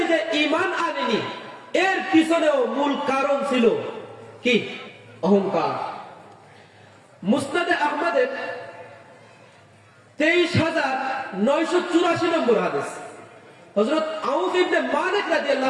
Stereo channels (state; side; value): identical; both; correlation 1.00